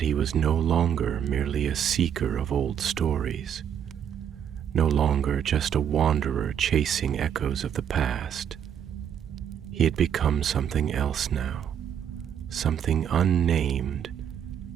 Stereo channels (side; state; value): left; quieter; 8.8 dB